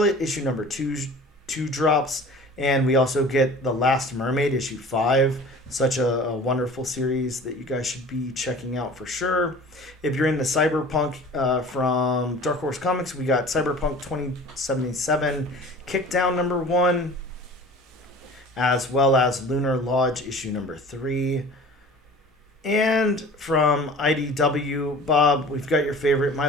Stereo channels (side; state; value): both; normal; correlation 0.43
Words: issue number 2 drops, and we also get The Last Mermaid issue 5. Such a wonderful series that you guys should be checking out for sure. If you're into Cyberpunk from Dark Horse Comics, we got Cyberpunk 2077 Kickdown number 1, as well as Lunar Lodge issue number 3. And from IDW, Bob, we've got your favorite My